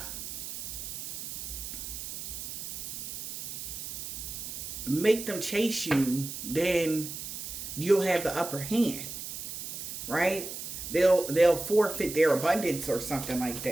make them chase you, then you'll have the upper hand. Right? They'll forfeit their abundance or something like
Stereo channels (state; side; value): noise; right; hiss, 7 dB below the sound